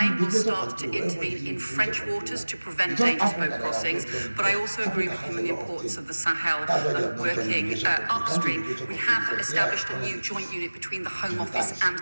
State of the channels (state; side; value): inverted; both; correlation -1.00